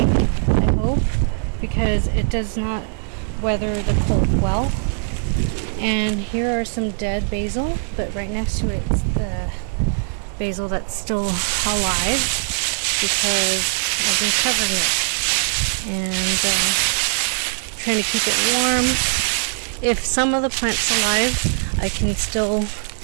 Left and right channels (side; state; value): left; silent; 65 dB below the other